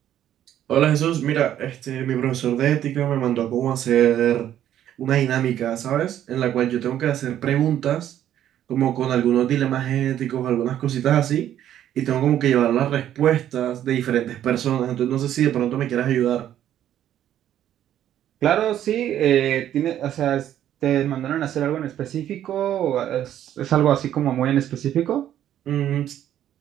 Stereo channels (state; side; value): quieter; left; 11.2 dB